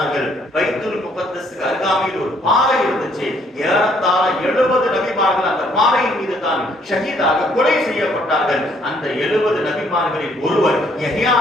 பைத்துல் முகத்தஸ்க்கு அருகாமையில் ஒரு பாறை இருந்துச்சு, ஏறத்தாழ 70 நபிமார்கள் அந்த பாறையின் மீது தான் ஷஹீதாக கொலை செய்யப்பட்டார்கள். அந்த 70 நபிமார்களில் ஒருவர் யஹ்யா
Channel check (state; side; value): normal; both; correlation 0.66